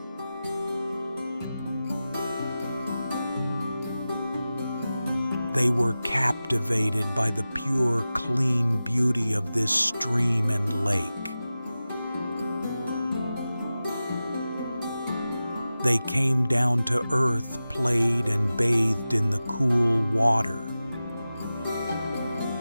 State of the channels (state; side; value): inverted; both; correlation -0.94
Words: They were captivated by the pure, clean beauty of this stream and lake. They came down to earth, played and bathed in the cool water.